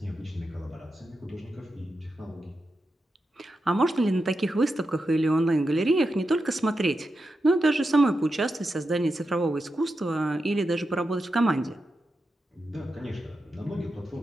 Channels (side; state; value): both; normal; correlation 0.88